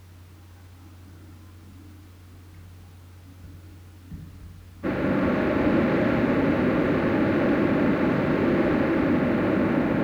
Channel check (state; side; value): identical; both; correlation 1.00